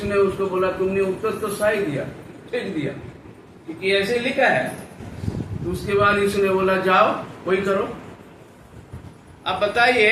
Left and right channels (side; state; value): both; identical; correlation 1.00